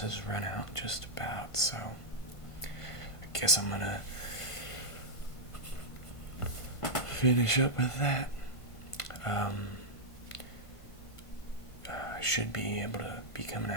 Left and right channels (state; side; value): late; right; 1.5 ms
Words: run out just about, so I guess I'm gonna finish up with that. I should be able to be coming